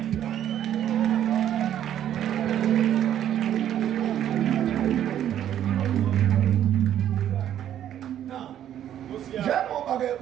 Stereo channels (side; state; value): left; quieter; 10.8 dB